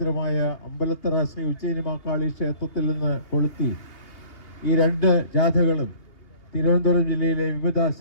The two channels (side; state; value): right; late; 2.8 ms